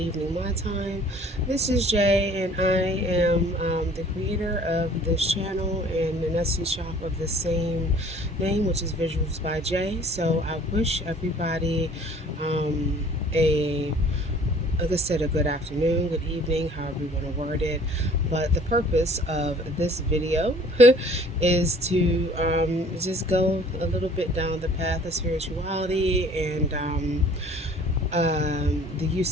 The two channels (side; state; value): both; normal; correlation 0.52